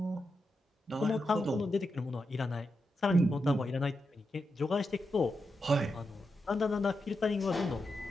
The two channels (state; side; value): normal; both; correlation 0.87